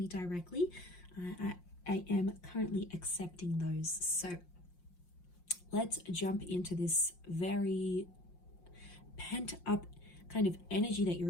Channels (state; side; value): late; right; 5.6 ms